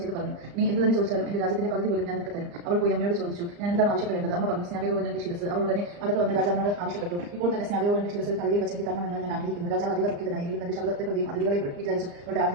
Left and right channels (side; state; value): left; late; 35 ms